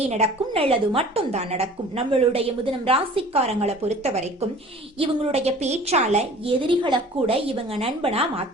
நடக்கும், நல்லது மட்டும் தான் நடக்கும். நம்மளுடைய முதனம் ராசிக்காரங்களை பொறுத்த வரைக்கும் இவங்களுடைய பேச்சால எதிரிகளை கூட இவங்க நண்பனா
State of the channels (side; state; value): both; normal; correlation 0.46